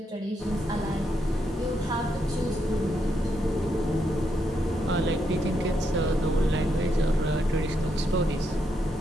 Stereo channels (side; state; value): both; normal; correlation 0.79